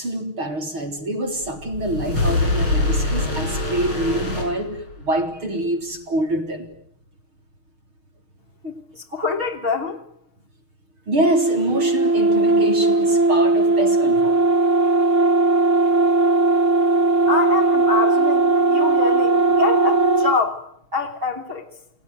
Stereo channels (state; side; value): late; left; 6.5 ms